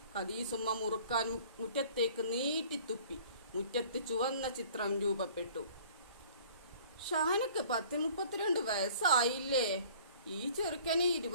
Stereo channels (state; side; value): inverted; both; correlation -0.51